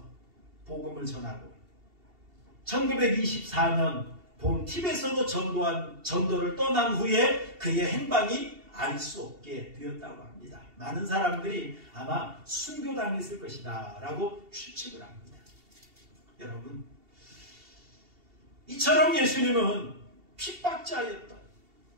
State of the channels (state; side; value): late; left; 2.7 ms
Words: 복음을 전하고 1924년 봄 티벳으로 전도를 떠난 후에 그의 행방이 알 수 없게 되었다고 합니다. 많은 사람들이 아마 순교당했을 것이다 라고 추측을 합니다. 여러분, 이처럼 예수님은 핍박자였던